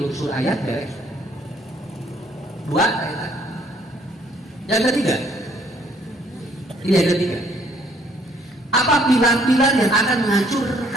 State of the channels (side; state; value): both; normal; correlation 0.63